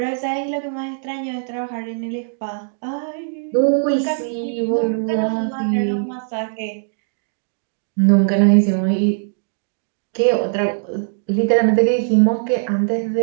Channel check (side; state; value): left; silent; digital silence